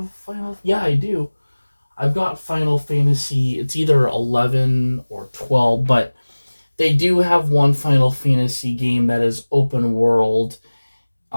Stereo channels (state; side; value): inverted; both; correlation -1.00